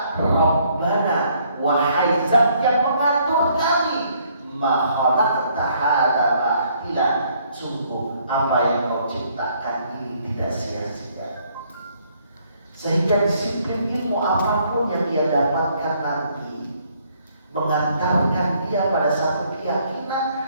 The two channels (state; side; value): inverted; both; correlation -0.66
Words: Rabbana, wahai Zat yang mengatur kami, ma khalaqta hadza batila, sungguh apa yang kau ciptakan ini tidak sia-sia. Sehingga disiplin ilmu apapun yang dia dapatkan nanti mengantarkan dia pada satu